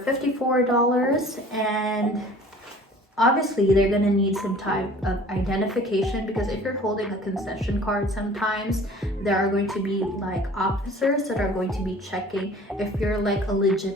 and obviously they're gonna need some type of identification, because if you're holding a concession card, sometimes there are going to be like officers that are going to be checking if you're like a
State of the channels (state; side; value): normal; both; correlation 0.48